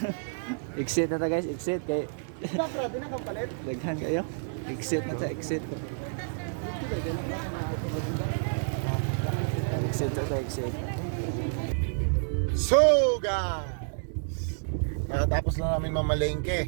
Exit na ta guys, exit kay Sakra din ang palit. daghan kayo. Exit na ta, exit. Exit na ta, exit. So guys, nakatapos na namin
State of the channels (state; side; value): silent; left; digital silence